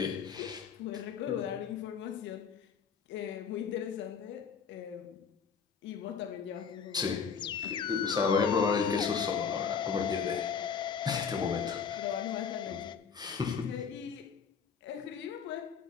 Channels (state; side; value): quieter; right; 6.4 dB